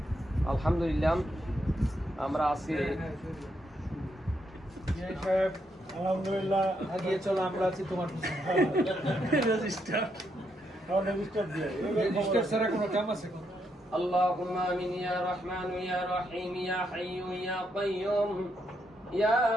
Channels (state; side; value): normal; both; correlation 0.78